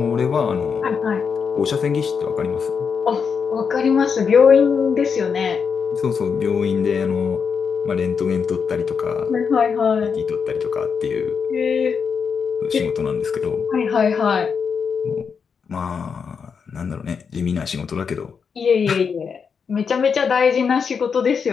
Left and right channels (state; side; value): quieter; right; 6.1 dB